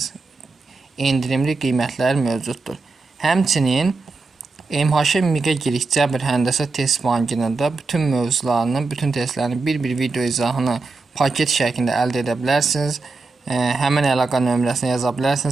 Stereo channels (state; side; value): quieter; left; 3.8 dB